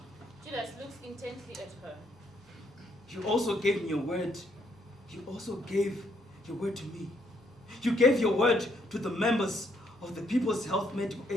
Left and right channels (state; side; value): normal; both; correlation 0.72